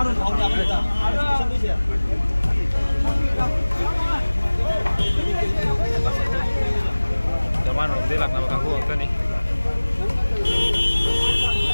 harus tahu apa dah. Zaman dia nak nama kaku apa ni?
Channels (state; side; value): inverted; both; correlation -1.00